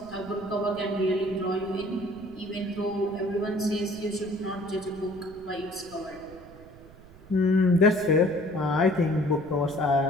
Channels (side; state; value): right; noise; rumble, 21 dB below the sound